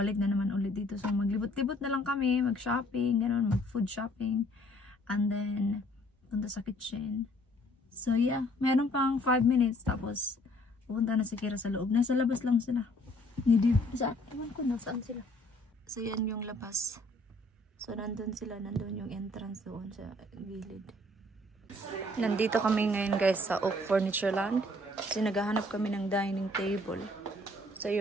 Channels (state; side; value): normal; both; correlation 0.60